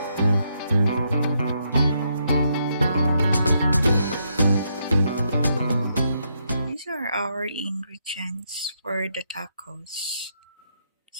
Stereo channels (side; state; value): both; inverted; correlation -0.78